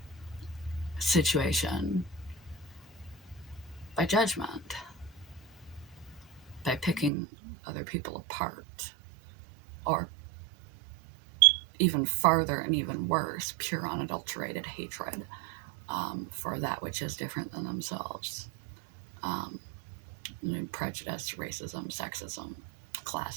situation by judgment, by picking other people apart, or even farther and even worse, pure unadulterated hatred for that which is different than themselves. Prejudice, racism, sexism,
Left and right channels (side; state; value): left; drops out; at 7.1 s